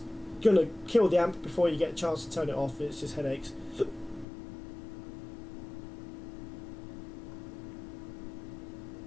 gonna kill the amp before you get a chance to turn it off. It's just headaches.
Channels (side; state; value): right; drops out; at 4.2 s